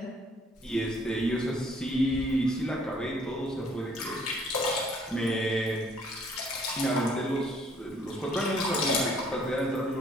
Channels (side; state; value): both; normal; correlation 0.61